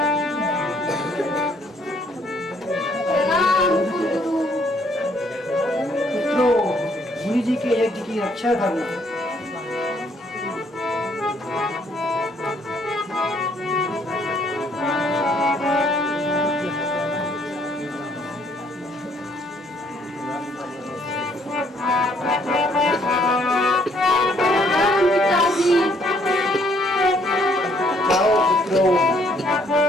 पुत्रों, मुनि जी के यज्ञ की रक्षा करना।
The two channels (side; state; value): both; normal; correlation 0.66